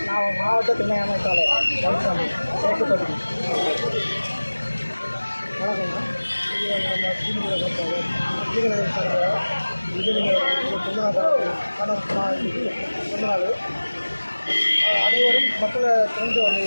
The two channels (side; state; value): both; inverted; correlation -1.00